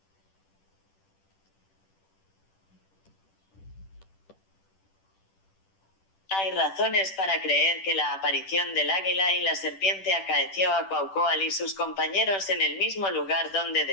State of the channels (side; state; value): right; late; 10 ms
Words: Hay razones para creer que la aparición del águila y la serpiente acaeció a Cuauhcoal y sus compañeros en el mismo lugar donde